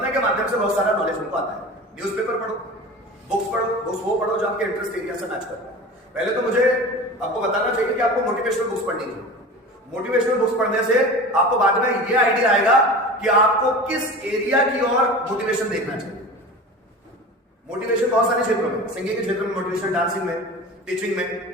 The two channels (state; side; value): normal; both; correlation 0.34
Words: के माध्यम से बहुत सारा नॉलेज हमको आता है। न्यूज़पेपर पढ़ो, बुक्स वो पढ़ो जो आपके इंटरेस्ट एरिया से मैच करता है। पहले तो मुझे आपको बताना चाहिए कि आपको मोटिवेशनल बुक्स पढ़नी है। मोटिवेशनल बुक्स पढ़ने से आपको बाद में ये आइडिया आएगा कि आपको किस एरिया की ओर मोटिवेशन देखना चाहिए। मोटिवेशन बहुत सारे क्षेत्रों में, सिंगिंग के क्षेत्र में मोटिवेशन, डांसिंग में, टीचिंग में,